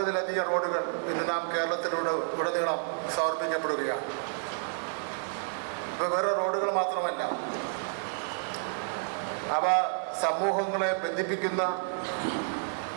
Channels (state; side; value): silent; left; 58 dB below the other